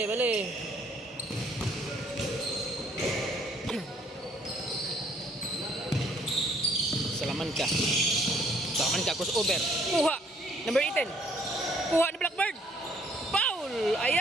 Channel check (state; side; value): normal; both; correlation 0.64